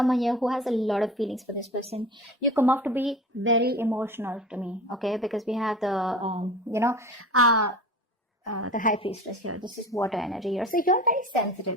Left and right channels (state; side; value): normal; both; correlation 0.36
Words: here who has a lot of feelings for this person. You come off to be very emotional to me, okay, because we have the, the high priestess here. This is water energy here. So you're very